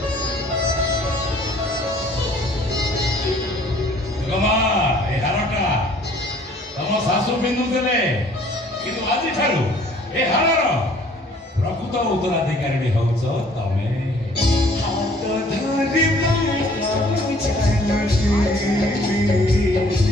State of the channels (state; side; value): normal; both; correlation 0.56